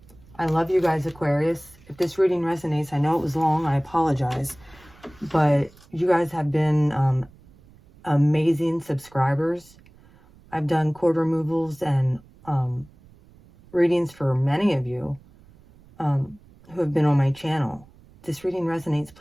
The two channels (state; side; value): noise; right; rumble, 26 dB below the sound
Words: I love you guys, Aquarius. If this reading resonates, I know it was long. I apologize. But you guys have been amazing subscribers. I've done cord removals and readings for many of you who have been on my channel. If this reading resonates,